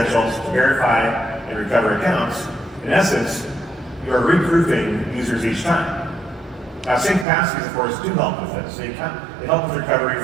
to verify and recover accounts, in essence, you are reproofing users each time. Now, sync passkeys, of course, do help with this. They help with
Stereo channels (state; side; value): drops out; left; at 7.2 s